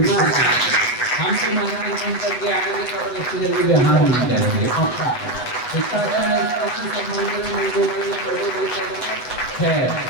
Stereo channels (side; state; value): right; late; 8.3 ms